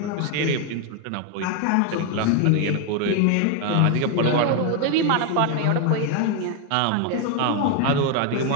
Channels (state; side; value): different; both; correlation 0.01